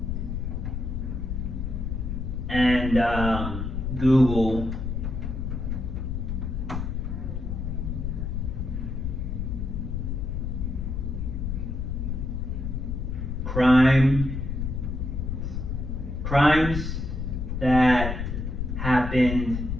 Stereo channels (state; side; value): noise; left; rumble, 2 dB below the sound